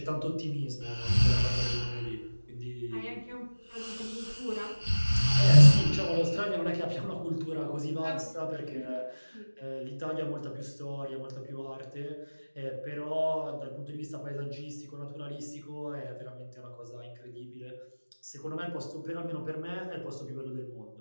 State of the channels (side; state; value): both; inverted; correlation -1.00